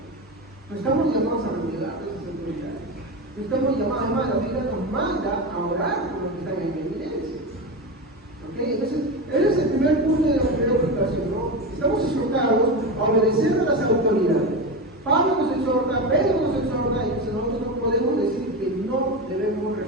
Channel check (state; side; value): normal; both; correlation 0.20